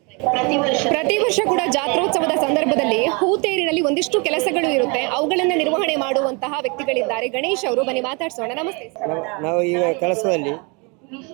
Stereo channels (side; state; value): left; quieter; 31.1 dB